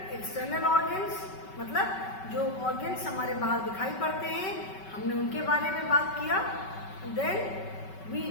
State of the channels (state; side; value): late; right; 5.3 ms